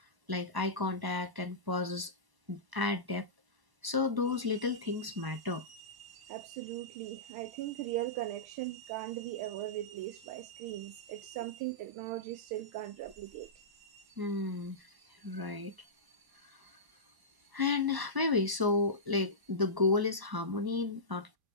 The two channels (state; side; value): late; left; 1.0 ms